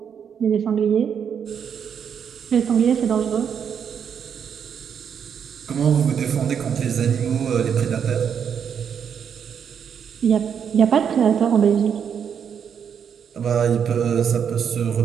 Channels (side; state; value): left; quieter; 7.7 dB